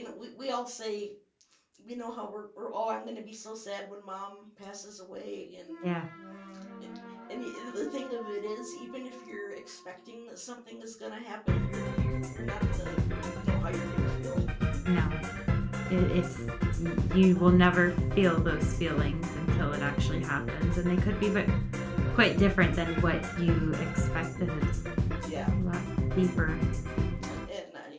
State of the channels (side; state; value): both; identical; correlation 1.00